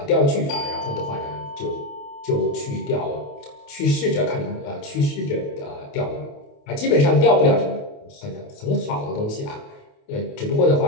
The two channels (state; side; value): late; right; 28 ms